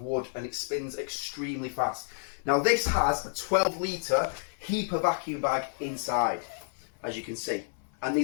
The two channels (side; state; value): right; silent; 58 dB below the other